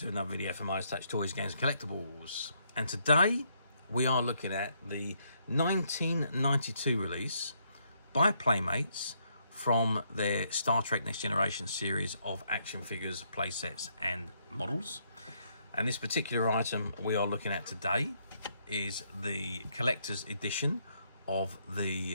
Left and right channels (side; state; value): both; inverted; correlation -0.73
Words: another video from Midas Touch Toys, Games, Collectibles. And today we are looking at the 1992 release by Playmates from their Star Trek Next Generation series of action figures, playsets and models. And this particular item we are looking at today is the collector's edition of